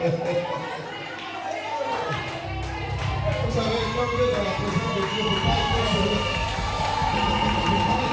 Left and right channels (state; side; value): identical; both; correlation 1.00